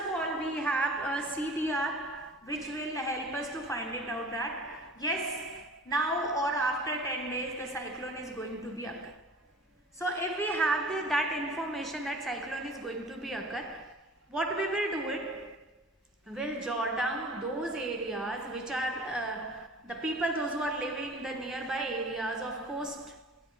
all, we have a CDR which will help us to find it out that yes, now or after 10 days the cyclone is going to be occur. So if we have that information that cyclone is going to be occur, what we will do it, will jot down those areas which are the people, those who are living the nearby areas of coast,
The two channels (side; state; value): both; normal; correlation 0.43